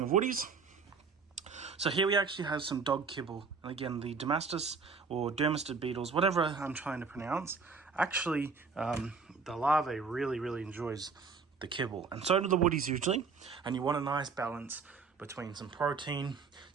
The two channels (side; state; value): left; quieter; 5.0 dB